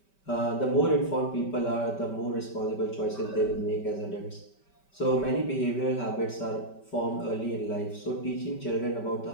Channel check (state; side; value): late; right; 5.2 ms